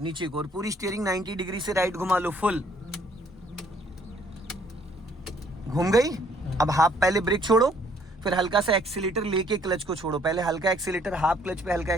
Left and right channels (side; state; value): both; normal; correlation 0.63